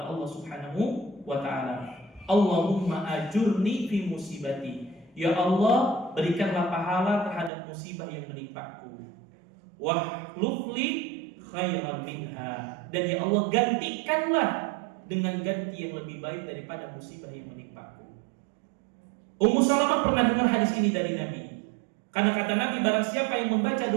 Allah Subhanahu wa ta'ala. Allahumma ajurni fi musibati. Ya Allah, berikanlah pahala terhadap musibah yang menimpaku. Wahlufli khairan minha. Dan ya Allah, gantikanlah dengan ganti yang lebih baik daripada musibah yang menimpaku. Ummu Salamah pernah dengar hadis ini dari Nabi. Karena kata Nabi, barang siapa yang membaca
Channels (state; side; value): drops out; left; at 7.5 s